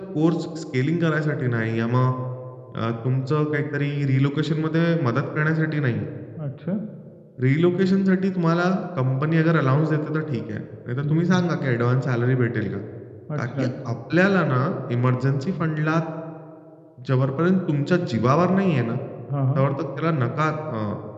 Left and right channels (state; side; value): identical; both; correlation 1.00